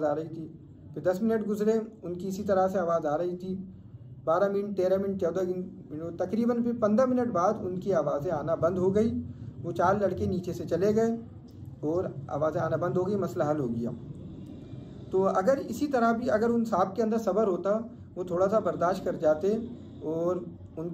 आ रही थी। फिर 10 मिनट गुजरे, उनकी इसी तरह से आवाज़ आ रही थी। 12 मिनट, 13 मिनट, 14 मिनट, तकरीबन फिर 15 मिनट बाद उनकी आवाज़ें आना बंद हो गई। वो 4 लड़के नीचे से चले गए और आवाज़ें आना बंद हो गई, मसला हल हो गया। तो अगर इसी तरह भी अगर उन साहब के अंदर सब्र होता, वो थोड़ा सा बर्दाश्त कर जाते और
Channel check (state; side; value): identical; both; correlation 1.00